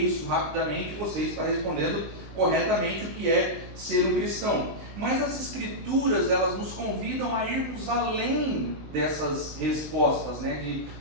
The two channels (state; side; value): late; left; 20 ms